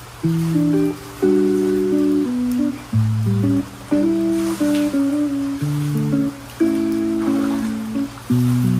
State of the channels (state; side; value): identical; both; correlation 1.00